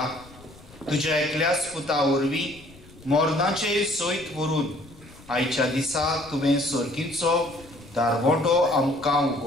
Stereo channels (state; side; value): noise; left; rumble, 22 dB below the sound